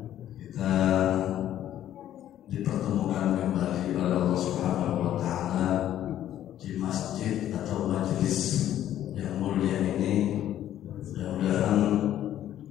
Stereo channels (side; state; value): right; quieter; 11.8 dB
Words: kita dipertemukan kembali oleh Allah Subhanahu wa Ta'ala di masjid atau majelis yang mulia ini. Mudah-mudahan